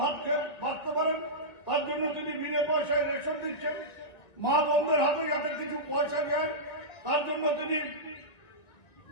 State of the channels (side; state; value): right; late; 2.0 ms